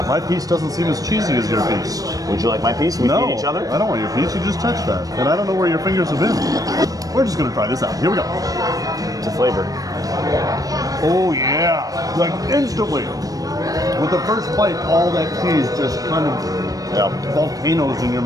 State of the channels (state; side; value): late; left; 0.18 ms